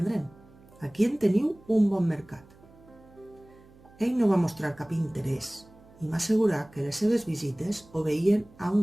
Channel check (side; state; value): right; noise; hum, 25 dB below the sound